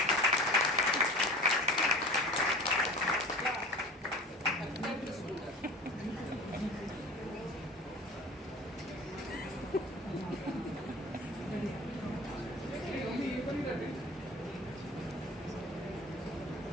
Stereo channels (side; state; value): both; normal; correlation 0.39